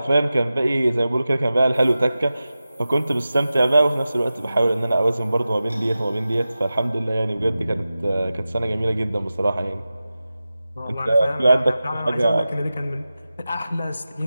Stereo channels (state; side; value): inverted; both; correlation -0.94